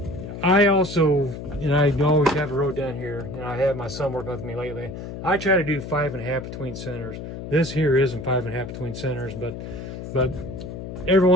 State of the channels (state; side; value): noise; left; hum, 9 dB below the sound